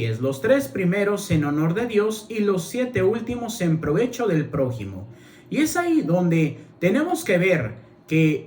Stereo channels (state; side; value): identical; both; correlation 1.00